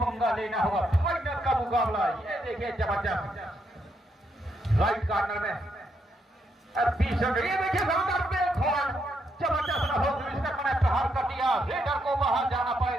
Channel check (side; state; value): both; normal; correlation 0.78